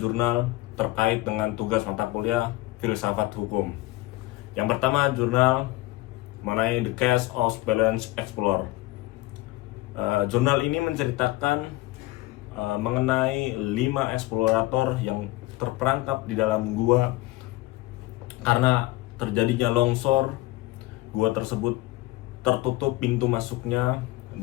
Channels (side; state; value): right; quieter; 18.7 dB